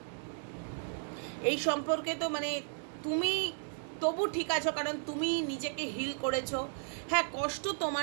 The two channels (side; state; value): left; silent; digital silence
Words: এই সম্পর্কে তো মানে তুমি তবু ঠিক আছো, কারণ তুমি নিজেকে হিল করেছো। হ্যাঁ, কষ্ট